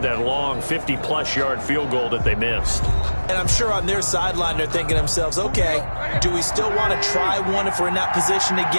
that long 50-plus yard field goal that they missed. And I'm sure on their sideline they're thinking to themselves, okay, do we still want to try one if we're in that position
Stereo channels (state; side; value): inverted; both; correlation -1.00